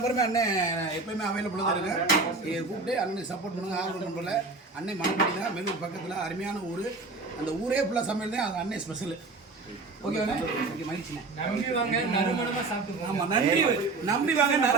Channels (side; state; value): left; quieter; 3.7 dB